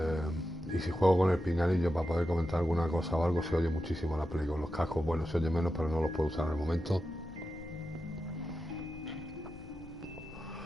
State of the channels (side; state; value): left; noise; rumble, 18 dB below the sound